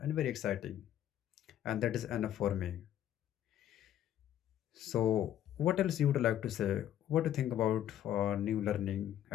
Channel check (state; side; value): quieter; right; 11.4 dB